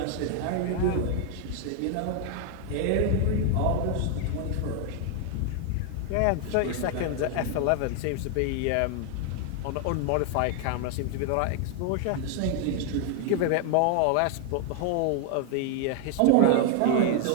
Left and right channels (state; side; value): different; both; correlation 0.00